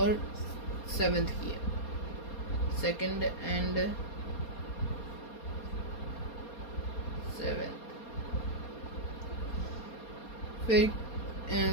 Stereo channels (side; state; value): right; late; 4.3 ms